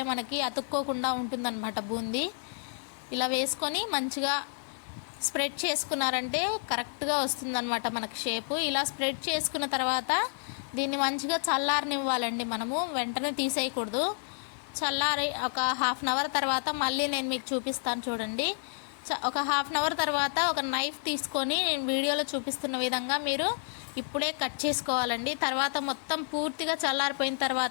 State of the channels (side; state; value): right; silent; digital silence